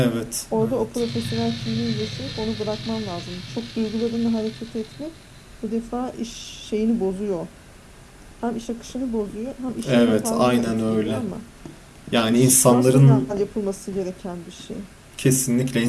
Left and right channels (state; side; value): identical; both; correlation 1.00